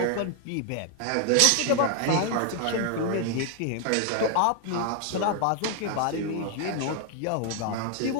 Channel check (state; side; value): different; both; correlation 0.00